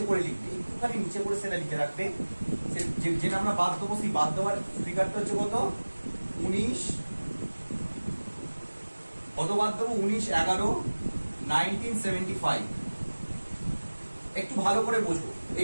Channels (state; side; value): inverted; both; correlation -1.00